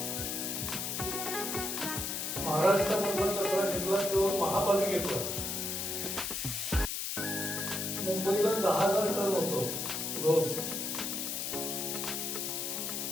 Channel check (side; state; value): left; noise; hiss, 2 dB below the sound